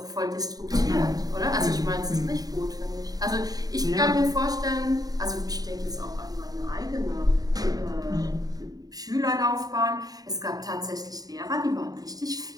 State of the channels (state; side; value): late; left; 0.18 ms